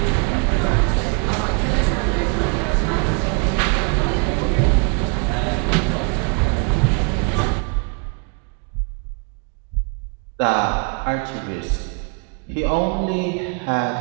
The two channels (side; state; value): left; quieter; 37.7 dB